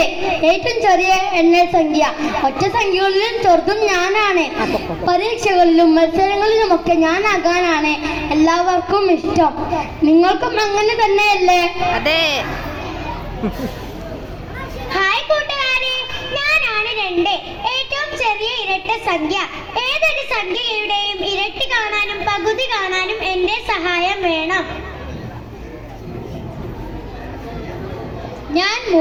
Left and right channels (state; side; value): identical; both; correlation 1.00